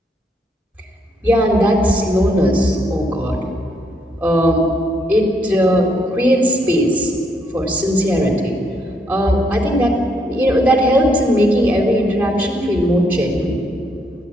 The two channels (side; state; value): both; normal; correlation 0.73